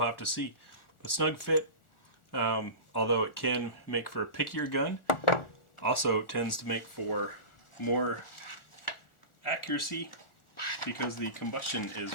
have to see. But snug fit, although it can make for a pickier gun, also tends to make for more accuracy because the combustion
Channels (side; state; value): right; late; 1.4 ms